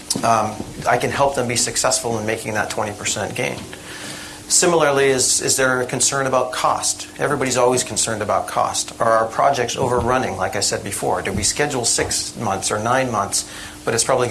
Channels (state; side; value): identical; both; correlation 1.00